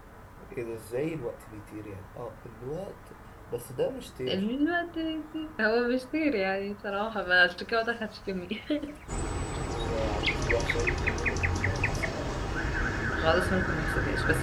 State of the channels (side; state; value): both; identical; correlation 1.00